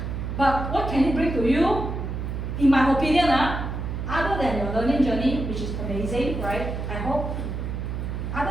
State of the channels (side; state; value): right; noise; hum, 4 dB below the sound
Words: But what can it bring to you? In my opinion, other than your learning journey, which is amazing, right? I hope.